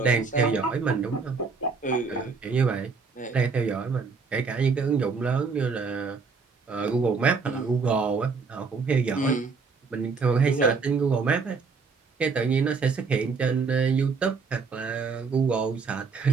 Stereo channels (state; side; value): quieter; left; 4.8 dB